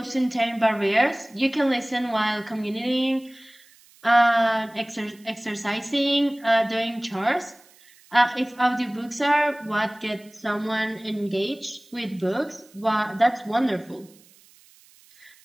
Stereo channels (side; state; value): right; noise; hiss, 27 dB below the sound